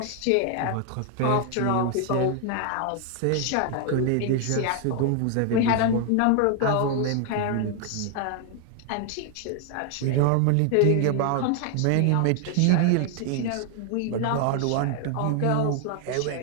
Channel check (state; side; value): different; both; correlation 0.00